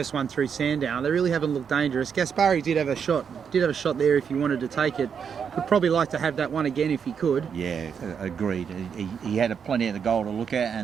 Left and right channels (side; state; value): left; quieter; 7.0 dB